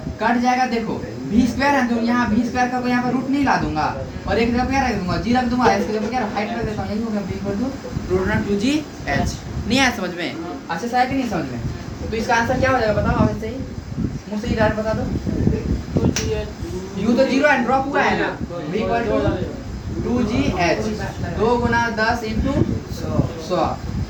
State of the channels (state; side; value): identical; both; correlation 1.00